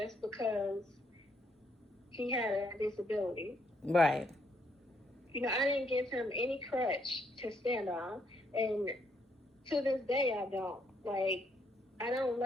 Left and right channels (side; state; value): both; normal; correlation 0.73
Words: because he had a disability. Right. I didn't give him any crutch to stand on. And to this day, I don't. Like, I don't